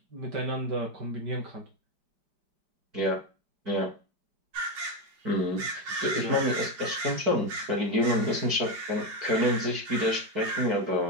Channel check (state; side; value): late; left; 5.0 ms